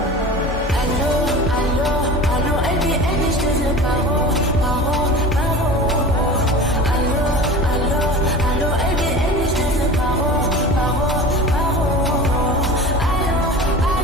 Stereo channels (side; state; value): both; normal; correlation 0.36